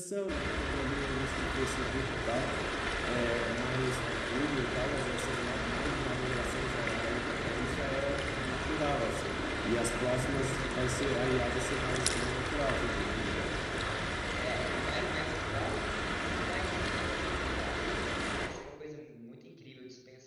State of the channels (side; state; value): both; identical; correlation 1.00